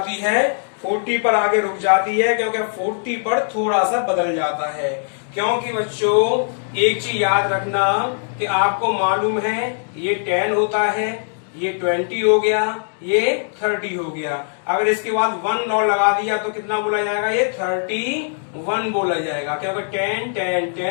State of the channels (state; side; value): silent; right; digital silence